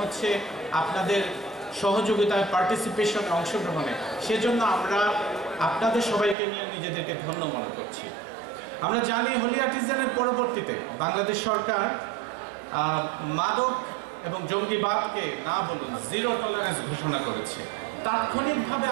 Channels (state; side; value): drops out; left; at 6.4 s